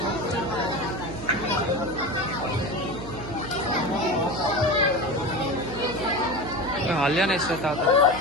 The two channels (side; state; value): right; noise; hum, 10 dB below the sound